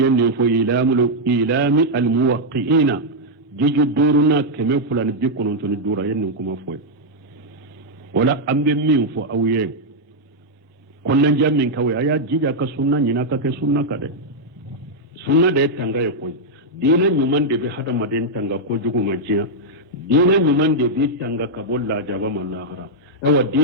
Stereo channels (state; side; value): normal; both; correlation -0.03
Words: fo ilami al muwaqqi'ina jiju duruna keme fulan bi konon to ni dura yenne kuma foy wala ambe min fo awye konnan jamin kawai aya jija ka sunna nyina ka ke sunna ka de sunna de tanga ye koy dina nyuman de be hada maden tanga ko jugo majiya dina nyuman de bi tanga ka bolla jaba mallahara ewa